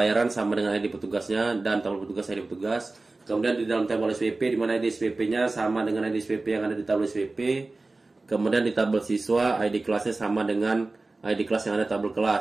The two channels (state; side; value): quieter; left; 3.3 dB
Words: sama dengan ID petugasnya dan tabel petugas ID petugas. Kemudian di dalam tabel SPP, di mana ID SPP-nya sama dengan ID SPP yang ada di tabel SPP. Kemudian di tabel siswa, ID kelasnya sama dengan ID kelas yang ada di tabel